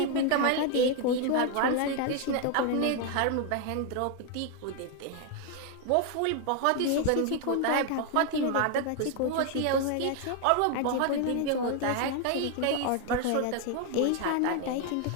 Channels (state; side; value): different; both; correlation 0.01